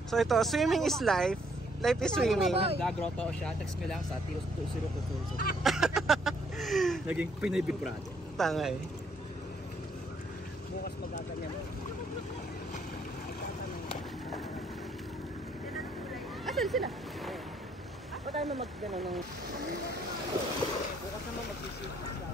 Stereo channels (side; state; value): both; normal; correlation 0.68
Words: So ito, swimming is life. Life is swimming. Gagroto siya. Text me lang sa Tios 2022. Naging Pinoy Big Brother. Tangay. Bukas magaganyan mo. Asan sila? Ba't tayo na mag-ganon ng... Bukas naman mag-isip.